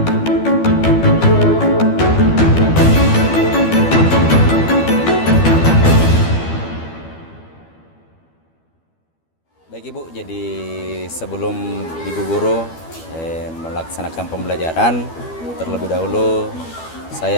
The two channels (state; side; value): late; right; 12 ms